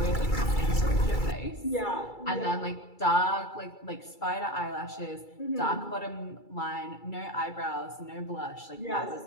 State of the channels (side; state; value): right; late; 2.3 ms